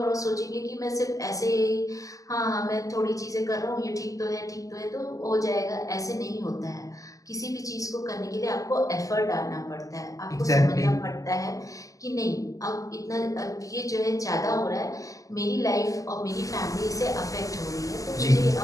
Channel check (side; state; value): right; late; 0.17 ms